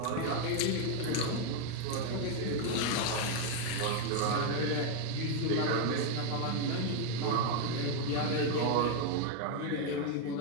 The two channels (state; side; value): different; both; correlation 0.01